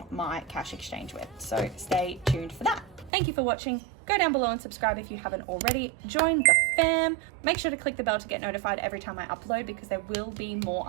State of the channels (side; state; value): left; drops out; at 3.1 s